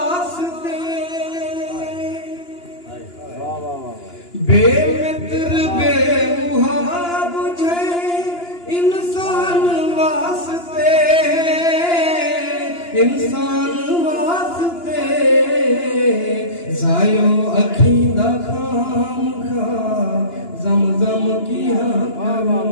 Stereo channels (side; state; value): right; late; 2.9 ms